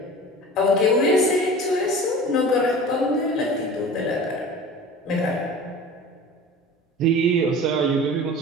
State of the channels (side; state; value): both; normal; correlation 0.38